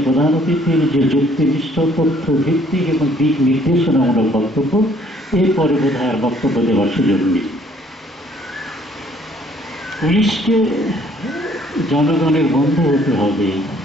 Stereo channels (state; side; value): normal; both; correlation 0.62